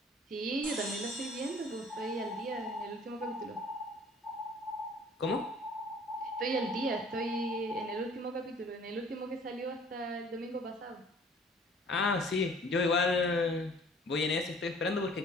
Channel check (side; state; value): both; normal; correlation 0.53